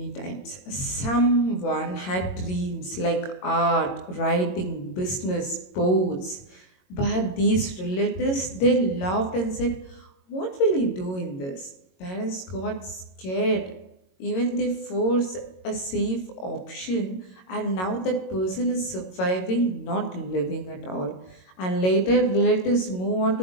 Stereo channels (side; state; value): right; late; 22 ms